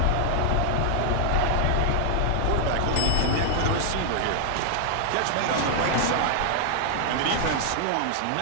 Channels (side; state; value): both; different; correlation 0.00